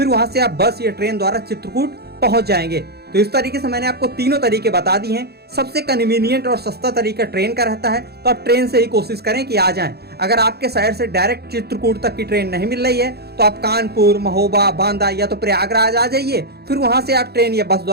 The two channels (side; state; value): left; late; 0.47 ms